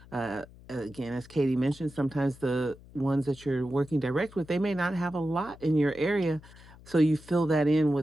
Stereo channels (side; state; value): left; noise; hum, 21 dB below the sound